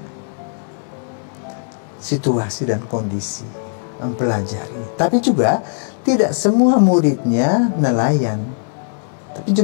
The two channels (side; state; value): right; silent; 64 dB below the other